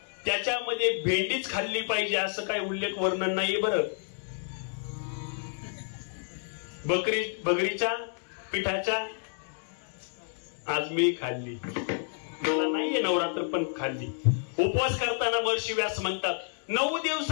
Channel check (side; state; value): right; silent; digital silence